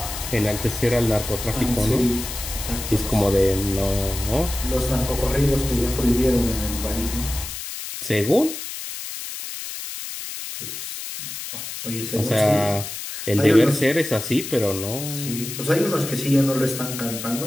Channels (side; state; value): left; noise; hiss, 8 dB below the sound